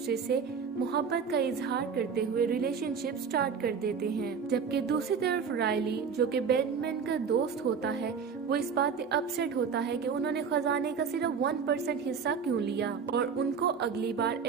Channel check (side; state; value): left; quieter; 6.2 dB